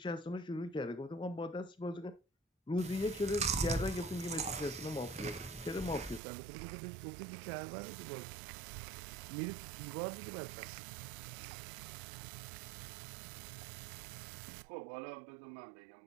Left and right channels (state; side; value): drops out; left; at 6.2 s